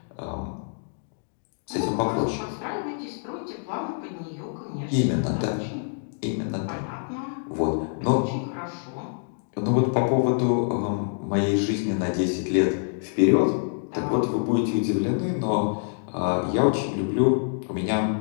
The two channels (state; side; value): silent; right; digital silence